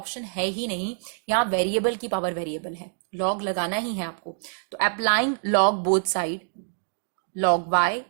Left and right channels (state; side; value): silent; left; 61 dB below the other